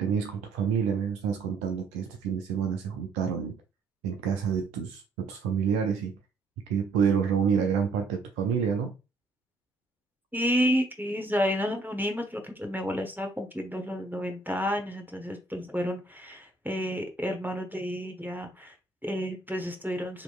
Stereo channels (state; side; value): quieter; left; 3.5 dB